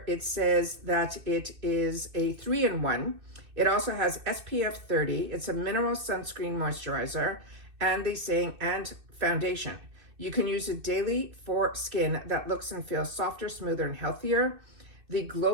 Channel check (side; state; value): left; late; 2.6 ms